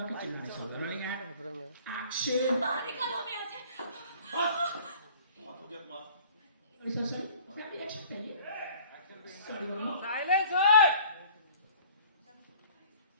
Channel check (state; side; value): inverted; both; correlation -0.51